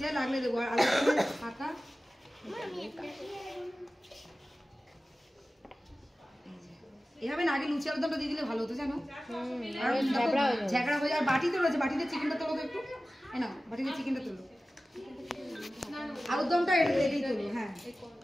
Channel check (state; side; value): normal; both; correlation 0.96